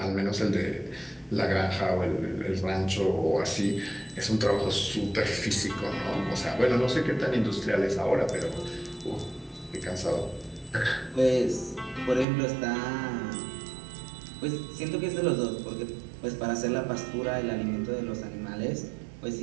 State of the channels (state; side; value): drops out; left; at 12.2 s